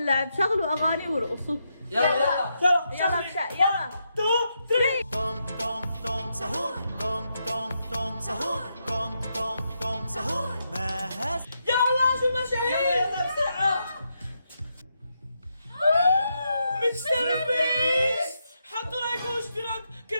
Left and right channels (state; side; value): inverted; both; correlation -0.82